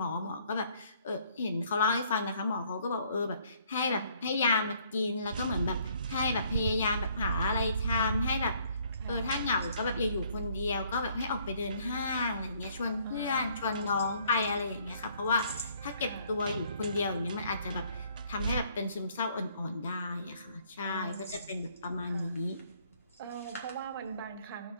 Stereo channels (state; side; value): inverted; both; correlation -0.64